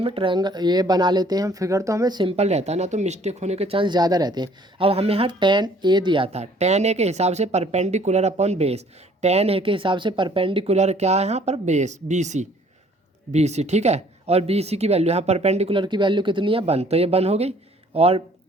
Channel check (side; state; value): both; normal; correlation 0.58